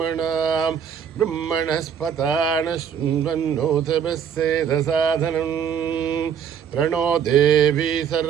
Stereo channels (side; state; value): left; quieter; 7.9 dB